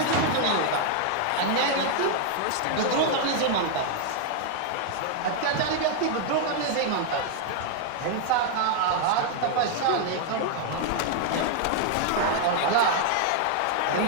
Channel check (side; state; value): both; different; correlation 0.00